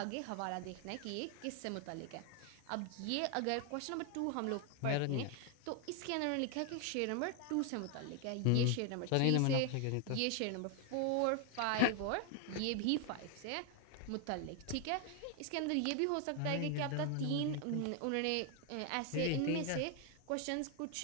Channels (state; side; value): different; both; correlation 0.00